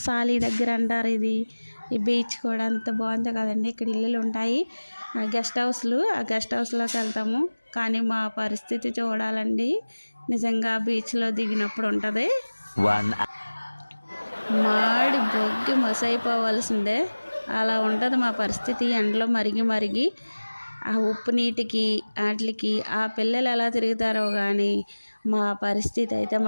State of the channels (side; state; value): both; inverted; correlation -1.00